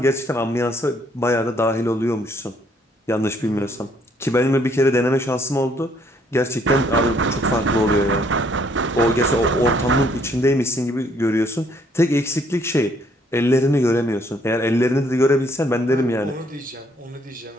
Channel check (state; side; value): normal; both; correlation 0.66